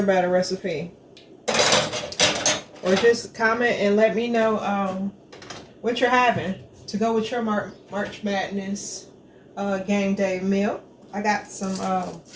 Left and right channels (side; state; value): both; identical; correlation 1.00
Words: batter recipe. Or just comment and let me know what you're having to go with your March Madness game day meal. I got some,